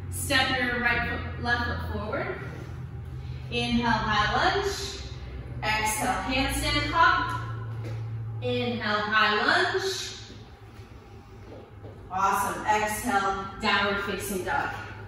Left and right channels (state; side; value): identical; both; correlation 1.00